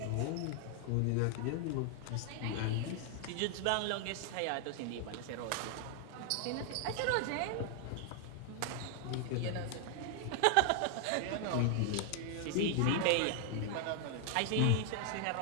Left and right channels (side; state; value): both; different; correlation 0.00